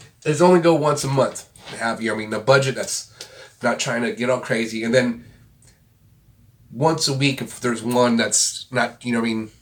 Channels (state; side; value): identical; both; correlation 1.00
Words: is only go once a month. Have the budget that's not trying to get all crazy, and then once a week if there's one that's not